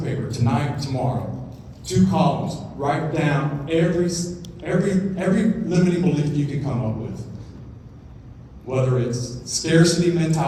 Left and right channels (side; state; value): both; identical; correlation 1.00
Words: paper tonight, tomorrow, 2 columns. Write down every limiting belief you can come up with. Whether it's scarcity